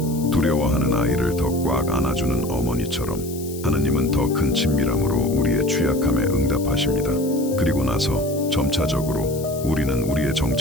두려워하는 아이를 더 꽉 안아주는 어머니처럼 하느님은 더 큰 친밀함으로 우리의 취약함에 응답하십니다. 그리고 나서 점차적으로 우리는 우리의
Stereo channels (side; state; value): left; noise; hiss, 15 dB below the sound